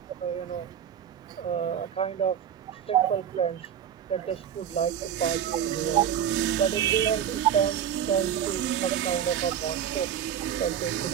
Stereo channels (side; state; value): left; quieter; 9.2 dB